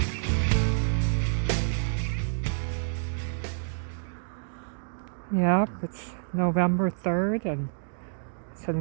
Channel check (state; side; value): silent; left; digital silence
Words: Yep, it's November 3rd and